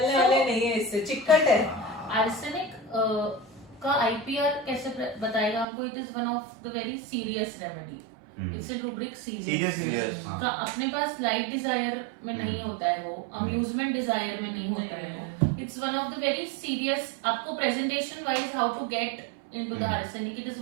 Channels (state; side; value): drops out; left; at 5.7 s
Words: वाले नहीं है, इससे चिकट है। आर्सेनिक का आईपीआर कैसे बताएगा हमको? It is one of the very serious remedy. It's a rubric serious serious का अपने पास लाइट डिजायर में नहीं होता है, वो अम्यूजमेंट डिजायर में नहीं होता है। It's one of the very serious, आपको presentation wise how to get into the arsenic, it is